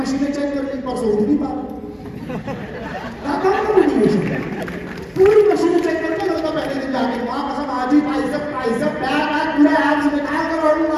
चेक कर ली, परसों उठ नहीं पा रहे। पूरी मशीनें चेक करके लगता पहले दिन जाके वहां कसम आज ही बाइसेप बैक पूरा एब्स निकाल कर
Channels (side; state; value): both; identical; correlation 1.00